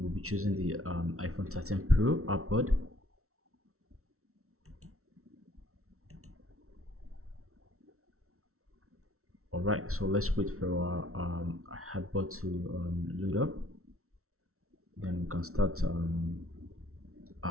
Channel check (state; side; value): late; left; 0.63 ms